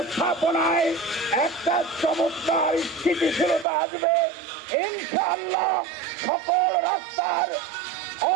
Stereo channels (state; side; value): drops out; left; at 3.7 s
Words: একটা চমৎকার স্থিতিশীলতা আসবে। ইনশাআল্লাহ সকল রাস্তার